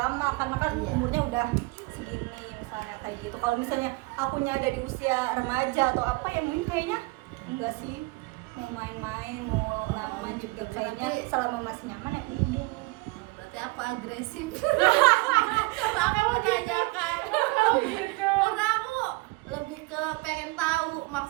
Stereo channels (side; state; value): left; quieter; 23.6 dB